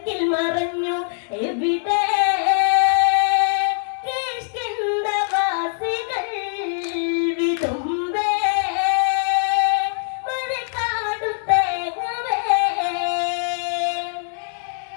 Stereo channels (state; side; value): silent; right; digital silence